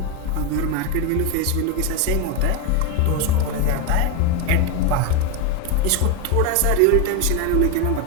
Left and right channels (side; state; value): both; different; correlation 0.02